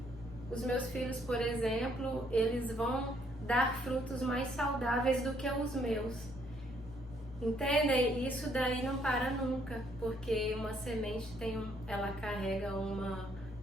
os meus filhos, por exemplo, eles vão dar frutos mais saudáveis do que os meus. Entendem? Isso daí não para nunca, porque uma semente ela carrega uma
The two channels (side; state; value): both; normal; correlation 0.68